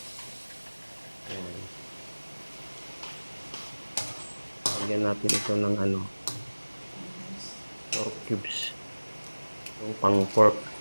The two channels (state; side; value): inverted; both; correlation -1.00